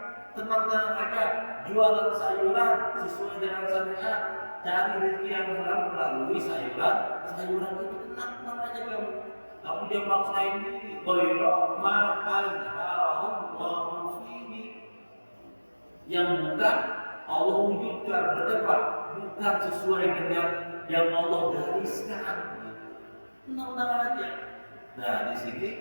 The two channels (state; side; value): inverted; both; correlation -1.00